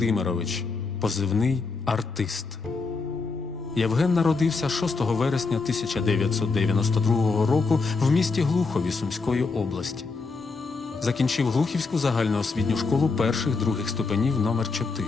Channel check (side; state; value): right; quieter; 4.2 dB